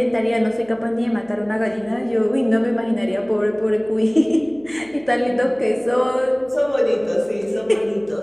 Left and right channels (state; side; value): noise; right; hum, 26 dB below the sound